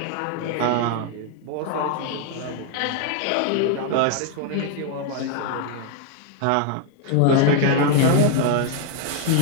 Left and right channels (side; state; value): both; different; correlation 0.00